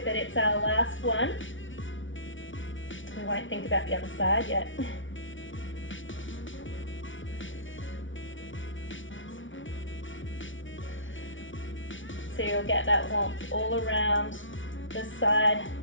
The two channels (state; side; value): late; right; 0.56 ms